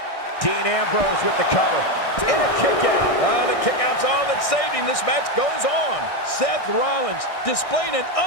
Dean Ambrose with the cover. And a kick out. The kick out's all that saved him. This match goes on. Seth Rollins displaying an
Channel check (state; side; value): late; right; 1.6 ms